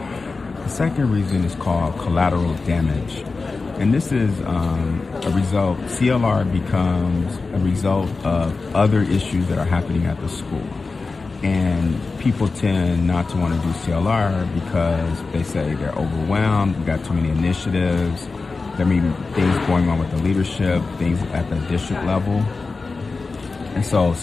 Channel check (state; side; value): quieter; right; 4.0 dB